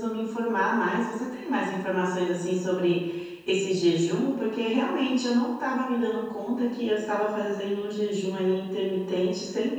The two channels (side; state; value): both; identical; correlation 1.00